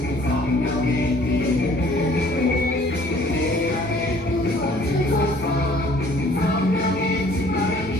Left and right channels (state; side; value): normal; both; correlation 0.55